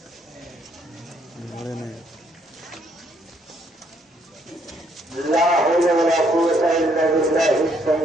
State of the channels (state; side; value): normal; both; correlation 0.70